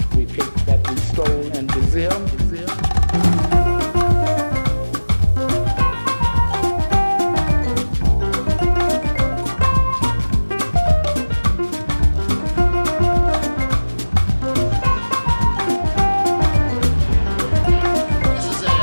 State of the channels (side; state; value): both; inverted; correlation -1.00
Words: we picked, that we stole in Brazil.